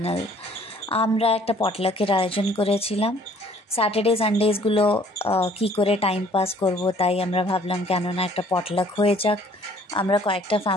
আমরা একটা পটলাকের আয়োজন করেছিলাম। স্যাটারডে সানডেজগুলো কী করে টাইম পাস করব, তাই আমরা ভাবলাম কেননা একটা পটলাক হয়ে যাক। আমরা কয়েকটা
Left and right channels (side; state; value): both; normal; correlation 0.57